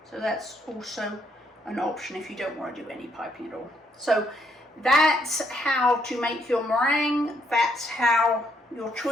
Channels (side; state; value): both; normal; correlation 0.72